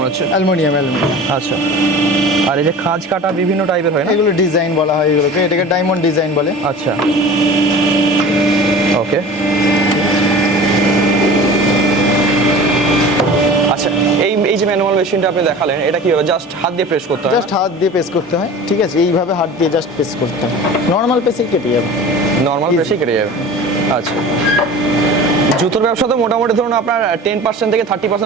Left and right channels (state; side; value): normal; both; correlation 0.38